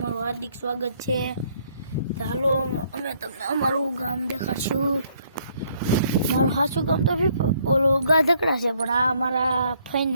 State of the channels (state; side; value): inverted; both; correlation -0.67